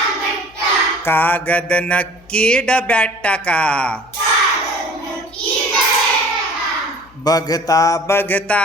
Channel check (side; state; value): left; noise; hum, 27 dB below the sound